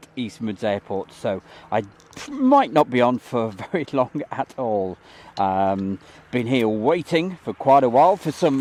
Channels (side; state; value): both; identical; correlation 1.00